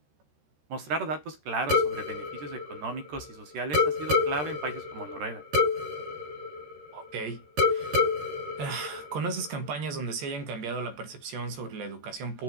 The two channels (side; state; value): left; late; 13 ms